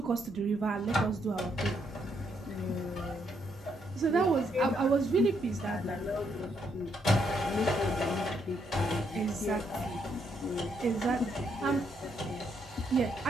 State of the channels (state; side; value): normal; both; correlation 0.75